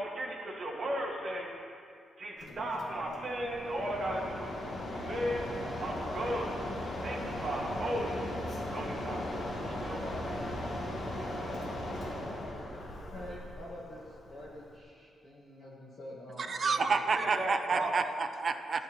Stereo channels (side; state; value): both; normal; correlation 0.83